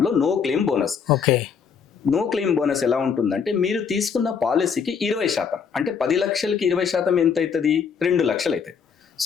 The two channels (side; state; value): right; quieter; 6.5 dB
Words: లో, no claim bonus. Okay. No claim bonus ఎలా ఉంటుందంటే, మీరు తీసుకున్న పాలసీకి 20%, అంటే 10 లక్షలకి 20% ఎంత అవుతుంది, 2 లక్షలు అవుతుంది.